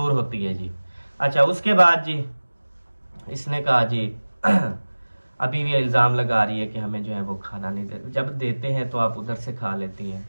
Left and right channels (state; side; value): inverted; both; correlation -1.00